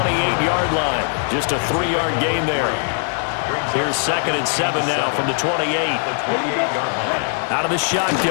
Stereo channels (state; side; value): silent; right; 55 dB below the other